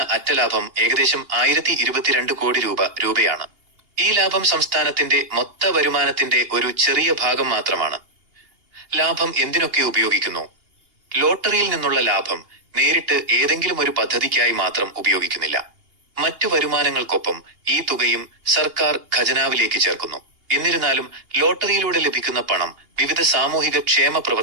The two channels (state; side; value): late; left; 2.8 ms